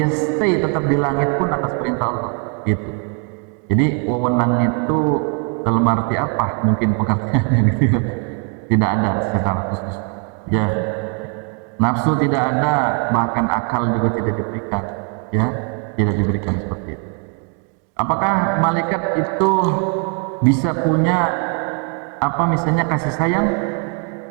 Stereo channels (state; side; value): quieter; left; 39.6 dB